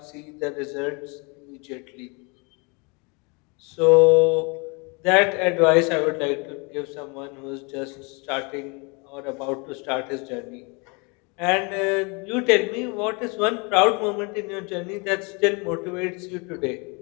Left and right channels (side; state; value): right; quieter; 31.0 dB